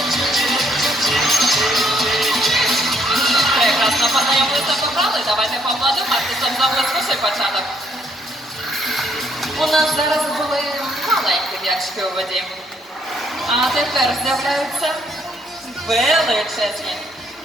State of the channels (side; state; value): both; normal; correlation 0.68